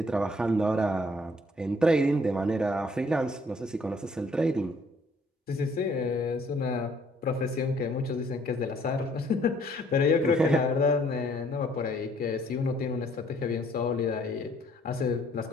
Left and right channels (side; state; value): both; normal; correlation 0.62